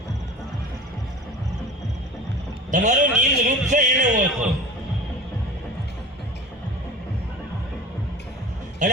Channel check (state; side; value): normal; both; correlation 0.36